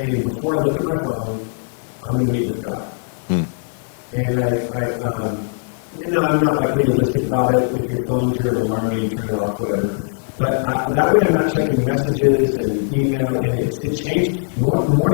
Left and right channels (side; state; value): right; silent; 66 dB below the other